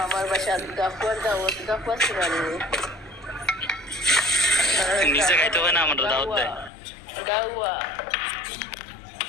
আমার বাসা গাফওয়ার দাওয়াত গাফওয়ার সিরানি নিজে খাইতে হয় না, আমাদের দাওয়াত দেয়। গাওয়া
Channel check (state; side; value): drops out; right; at 6.7 s